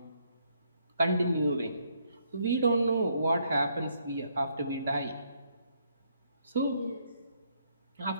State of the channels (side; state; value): both; inverted; correlation -0.71